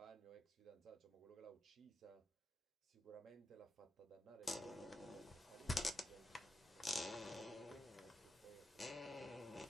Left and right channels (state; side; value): normal; both; correlation 0.87